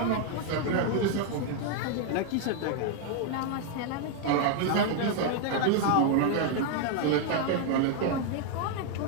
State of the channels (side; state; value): both; different; correlation 0.00